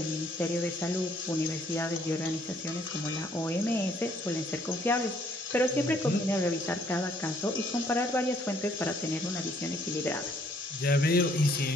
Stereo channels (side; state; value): both; normal; correlation 0.65